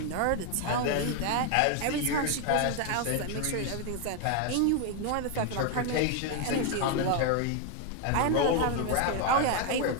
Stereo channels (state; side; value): different; both; correlation 0.01